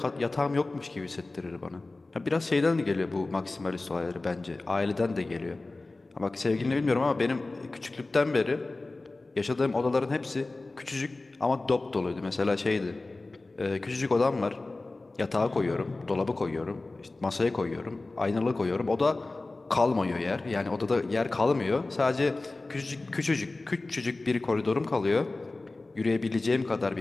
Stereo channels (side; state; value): right; quieter; 3.2 dB